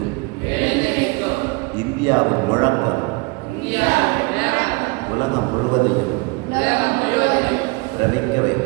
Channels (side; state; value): left; quieter; 27.6 dB